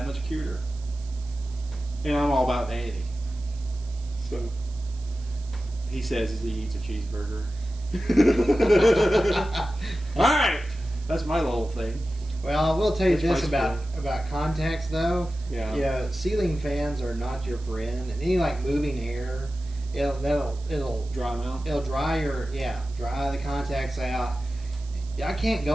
much cuter. And I'm all about vanity. So he says as he eats a cheeseburger. Alright. That's my little thing. Well, I will tell you That's this about contacts, though. Yeah. Yeah, ceiling fans are not your friend. And any like moving air, it'll dry them out. It'll dry the contacts out. I can't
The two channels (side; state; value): right; noise; hiss, 23 dB below the sound